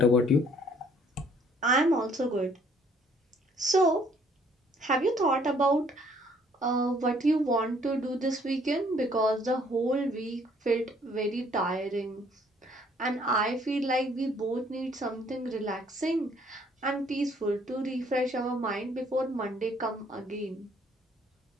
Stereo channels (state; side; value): normal; both; correlation 0.62